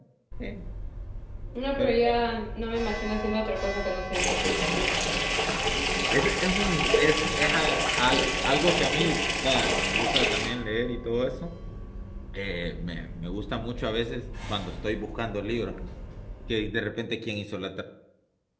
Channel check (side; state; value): both; identical; correlation 1.00